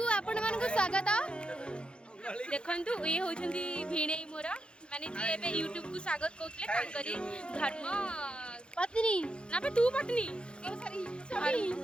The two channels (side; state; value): right; late; 0.054 ms